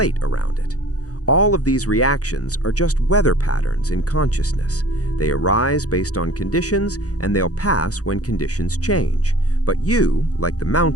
around it. All of these reactions are just weather patterns in consciousness. They arise based on conditions, and they'll pass when conditions change. But you, like the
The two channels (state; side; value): late; right; 0.67 ms